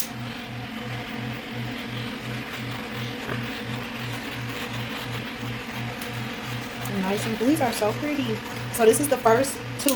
Nice, and these are so pretty. So this is the first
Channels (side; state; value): both; identical; correlation 1.00